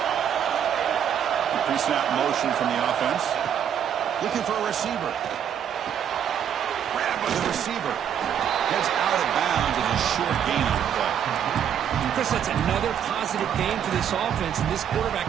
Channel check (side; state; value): left; quieter; 8.9 dB